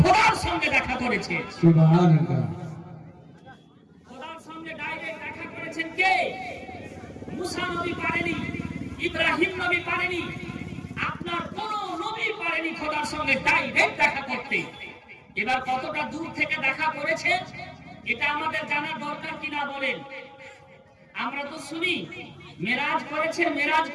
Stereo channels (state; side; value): identical; both; correlation 1.00